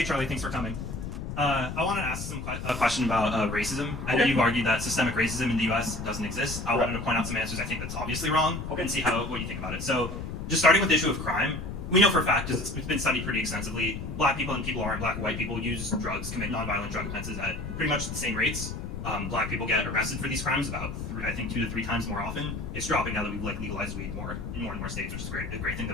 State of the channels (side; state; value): left; noise; rumble, 6 dB below the sound